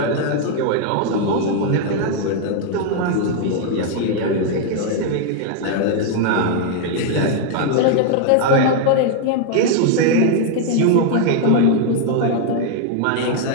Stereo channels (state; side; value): different; both; correlation 0.00